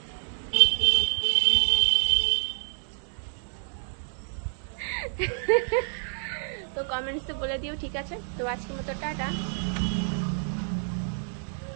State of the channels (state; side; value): silent; left; digital silence